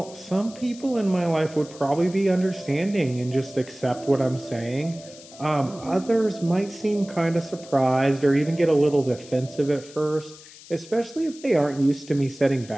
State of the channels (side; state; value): left; noise; hiss, 19 dB below the sound